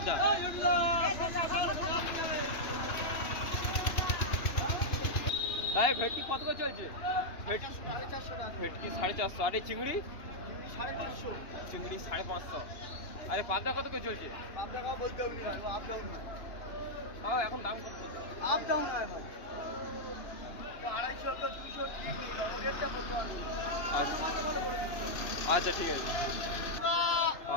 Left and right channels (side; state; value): right; late; 2.9 ms